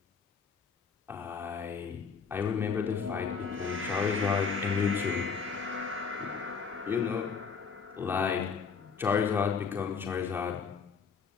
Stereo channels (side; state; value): right; quieter; 5.7 dB